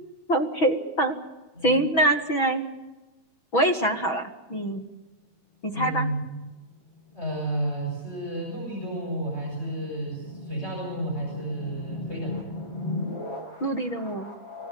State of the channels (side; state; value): right; late; 6.1 ms